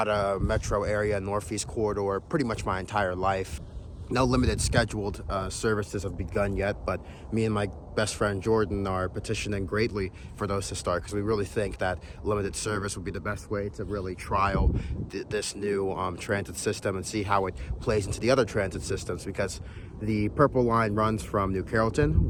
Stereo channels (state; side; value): identical; both; correlation 1.00